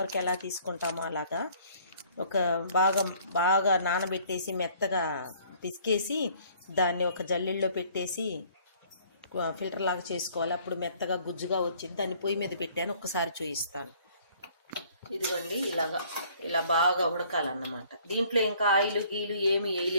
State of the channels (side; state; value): both; inverted; correlation -0.58